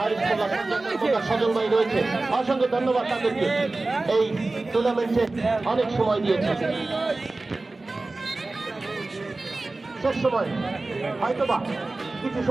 সজল ভাই রয়েছে, অসংখ্য ধন্যবাদ তাদেরকে, এই টুর্নামেন্টে অনেক সময় দিয়েছে। শেষ সময় হয়তোবা কিছু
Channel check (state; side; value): quieter; left; 3.2 dB